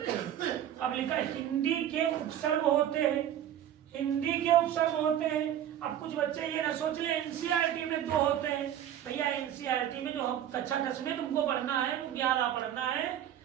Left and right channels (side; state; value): left; quieter; 10.8 dB